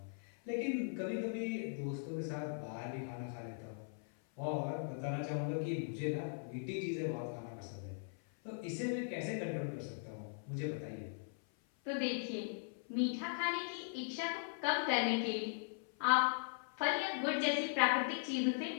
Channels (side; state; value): right; silent; 51 dB below the other